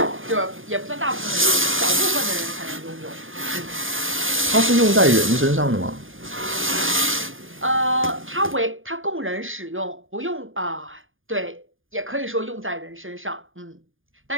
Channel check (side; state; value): left; late; 0.59 ms